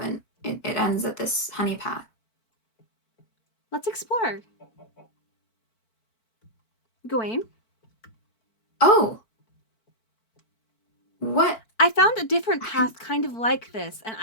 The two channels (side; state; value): right; late; 4.5 ms